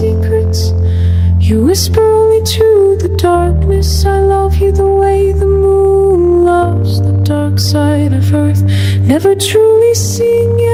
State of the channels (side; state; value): both; identical; correlation 1.00